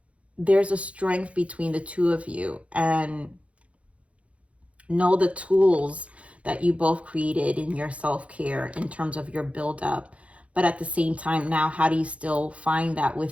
there's a strength between the two of you, and know the tools that you both created in your self-care in terms of your build-up. But at the same time, now how do you still find that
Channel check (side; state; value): left; late; 0.063 ms